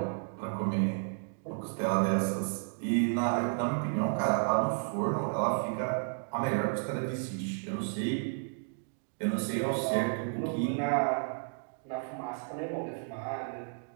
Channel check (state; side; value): silent; left; digital silence